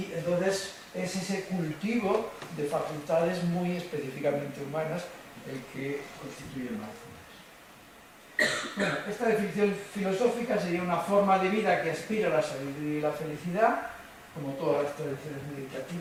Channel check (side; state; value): both; identical; correlation 1.00